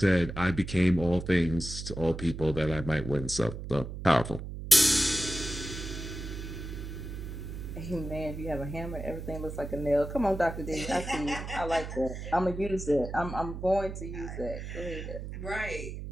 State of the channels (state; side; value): noise; right; hum, 8 dB below the sound